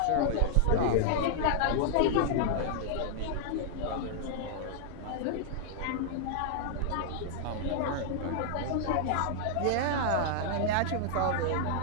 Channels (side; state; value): both; different; correlation -0.01